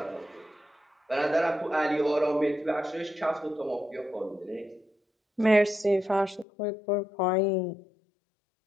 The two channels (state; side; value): drops out; right; at 6.5 s